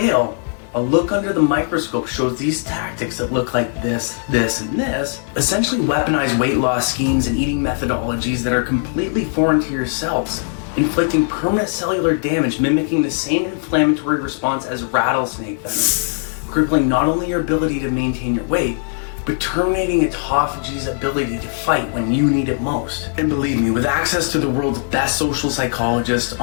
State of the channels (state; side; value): silent; right; 57 dB below the other